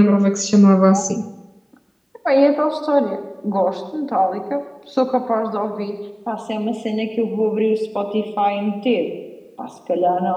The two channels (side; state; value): both; identical; correlation 1.00